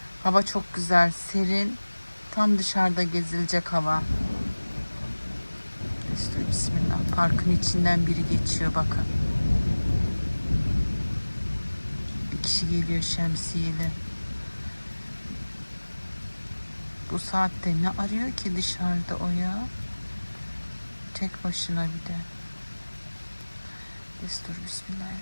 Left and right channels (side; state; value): both; inverted; correlation -1.00